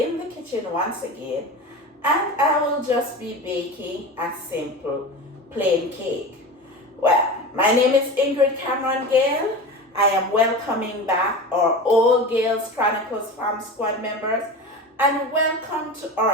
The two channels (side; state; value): both; normal; correlation 0.29